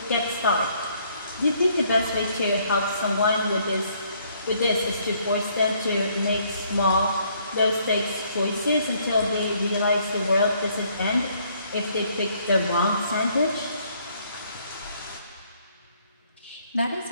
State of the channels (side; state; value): both; inverted; correlation -0.66